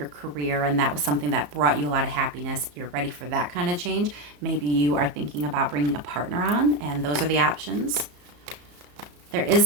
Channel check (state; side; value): late; left; 34 ms